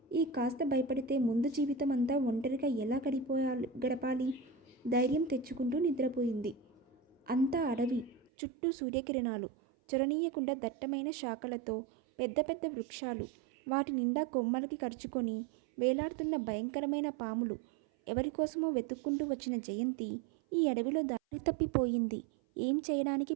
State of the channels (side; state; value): left; drops out; at 8.3 s